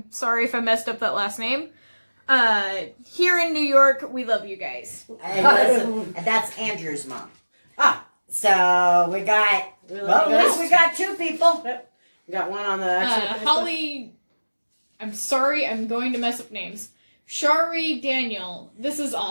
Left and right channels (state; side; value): inverted; both; correlation -1.00